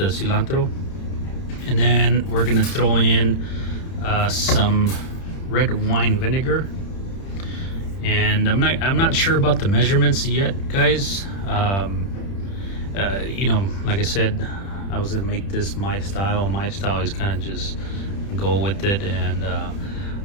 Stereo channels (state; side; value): late; right; 30 ms